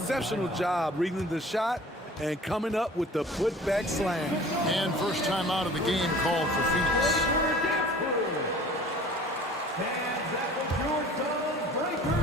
job reading the shot and coming up with the putback slam. And first time out of the game called for Phoenix.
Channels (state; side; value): normal; both; correlation 0.46